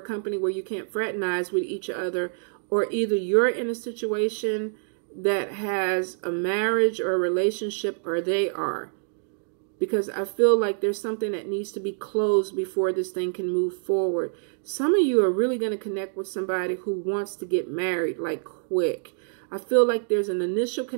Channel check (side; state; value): left; silent; digital silence